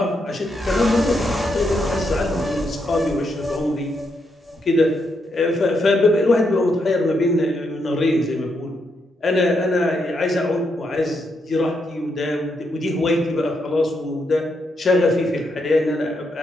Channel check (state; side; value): normal; both; correlation 0.80